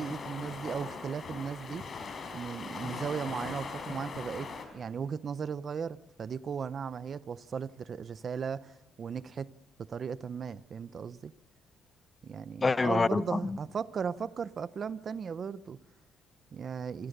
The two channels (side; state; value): both; normal; correlation 0.84